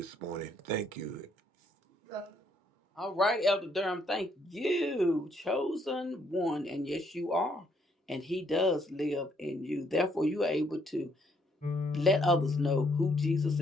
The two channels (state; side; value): normal; both; correlation 0.70